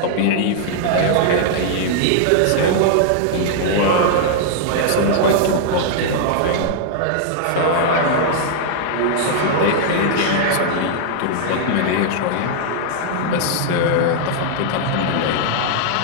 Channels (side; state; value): both; different; correlation -0.01